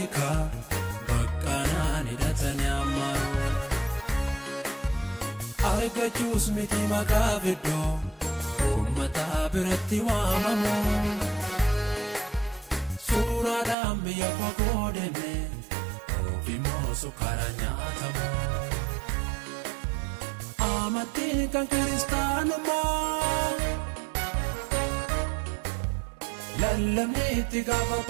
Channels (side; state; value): left; drops out; at 13.8 s